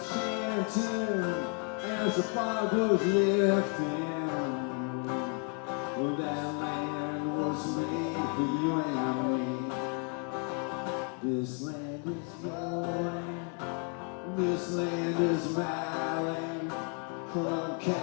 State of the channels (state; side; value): quieter; right; 38.7 dB